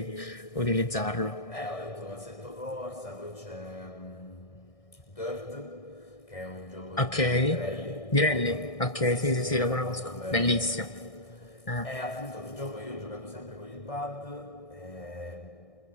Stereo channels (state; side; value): late; right; 1.6 ms